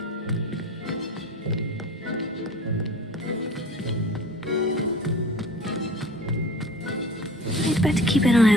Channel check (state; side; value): normal; both; correlation 0.41